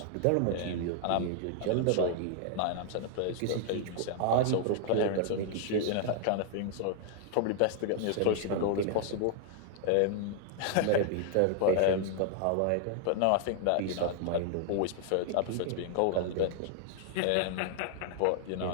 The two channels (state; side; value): different; both; correlation 0.00